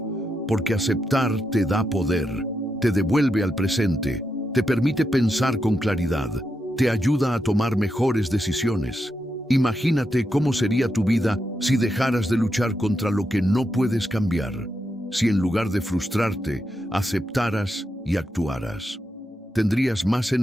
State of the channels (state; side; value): normal; both; correlation 0.84